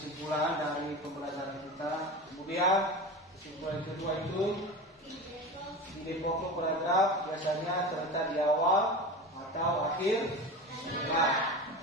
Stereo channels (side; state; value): both; normal; correlation 0.28